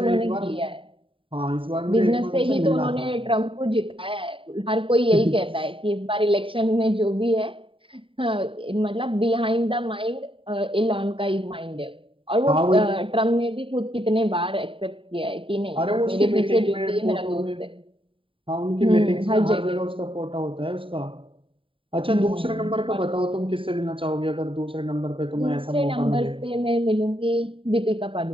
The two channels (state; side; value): late; left; 0.25 ms